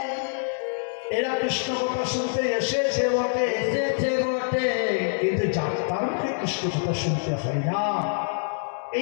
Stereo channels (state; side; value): silent; right; digital silence